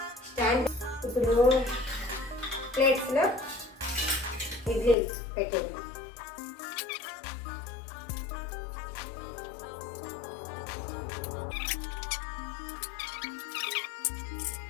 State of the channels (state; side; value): drops out; right; at 5.0 s